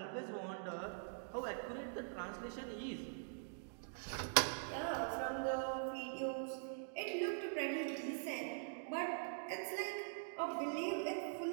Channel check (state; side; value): silent; left; digital silence